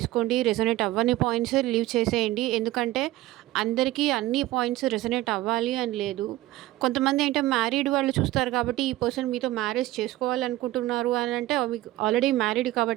రెసొనేట్ అవ్వని పాయింట్స్ లీవ్ చేసేయండి. ఎందుకంటే అందరికీ అన్ని పాయింట్స్ రెసొనేట్ అవ్వాలి అని లేదు. కొంతమంది అంటే మ్యారీడ్ వాళ్ళు చూస్తారు కాబట్టి ఈ పర్సన్ మీతో మ్యారేజ్ చేసుకోవాలనుకుంటున్నారు అని అంటే మీకు ఆల్రెడీ మ్యారీడ్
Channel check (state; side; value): quieter; left; 16.6 dB